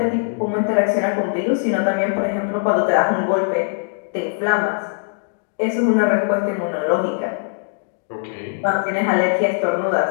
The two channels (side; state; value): right; silent; digital silence